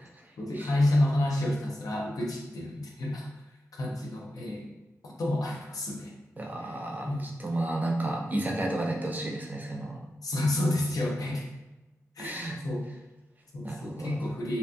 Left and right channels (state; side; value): normal; both; correlation 0.89